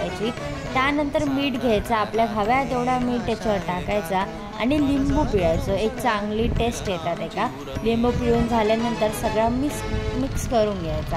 त्यानंतर मीठ घ्यायचं, आपल्या हव्या तेवढा मीठ त्याच्यावर टाकायचा आणि लिंबू पिळायचं. एक चांगली टेस्ट येतात एका. लिंबू पिळून झाल्यानंतर सगळं मिक्स करून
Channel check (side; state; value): both; identical; correlation 1.00